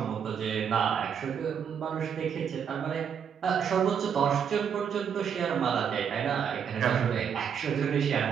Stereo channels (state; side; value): quieter; left; 7.6 dB